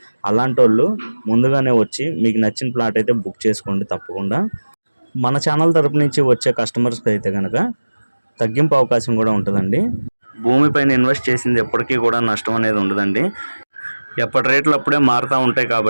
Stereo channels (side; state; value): both; inverted; correlation -1.00